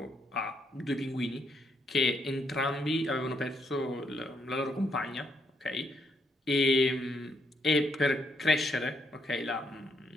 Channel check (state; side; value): normal; both; correlation 0.75